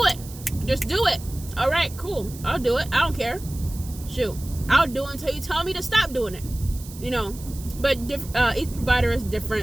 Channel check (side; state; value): right; noise; hiss, 17 dB below the sound